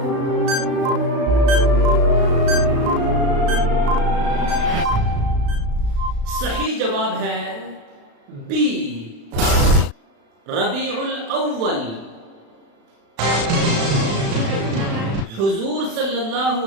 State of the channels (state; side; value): late; left; 36 ms